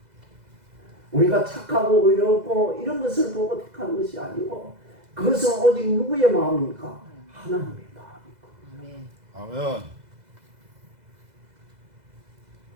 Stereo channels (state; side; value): late; left; 2.0 ms